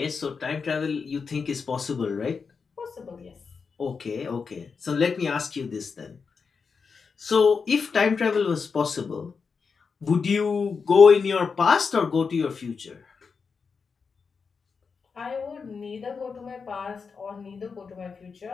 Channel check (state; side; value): quieter; right; 5.4 dB